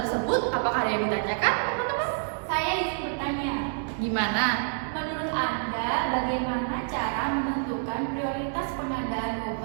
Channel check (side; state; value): left; silent; digital silence